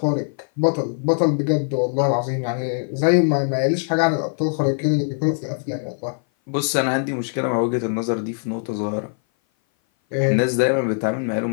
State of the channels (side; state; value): right; silent; 57 dB below the other